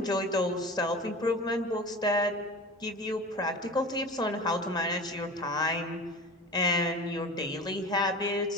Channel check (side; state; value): both; normal; correlation 0.35